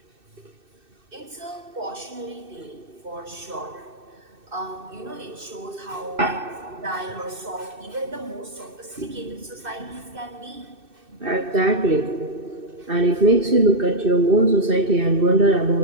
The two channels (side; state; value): left; late; 2.6 ms